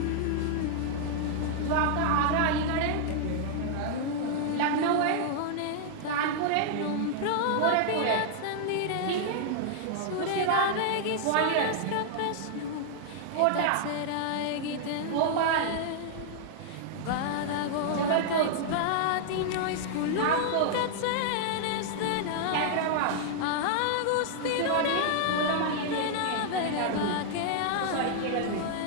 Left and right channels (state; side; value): different; both; correlation -0.01